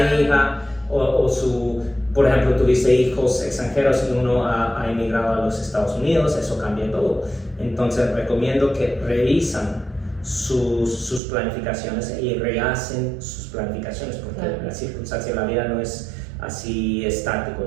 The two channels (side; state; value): left; drops out; at 11.2 s